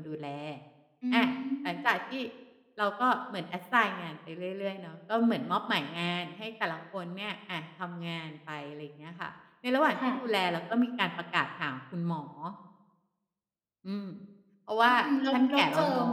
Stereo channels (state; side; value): identical; both; correlation 1.00